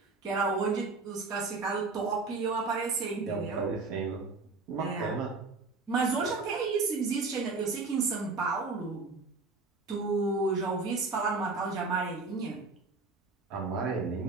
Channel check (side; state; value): left; quieter; 3.9 dB